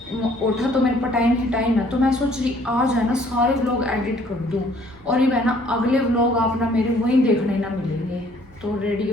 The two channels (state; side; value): noise; right; rumble, 26 dB below the sound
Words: उठा तो मेरे पास टाइम ही टाइम है। तो मैं सोच रही आज है ना सारे व्लॉग एडिट कर दूँ और ये है ना अगले व्लॉग आप ना मेरे वहीं देखने ना मिलेंगे। तो